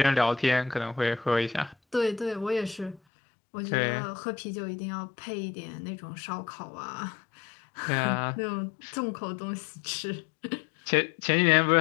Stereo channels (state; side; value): drops out; right; at 3.0 s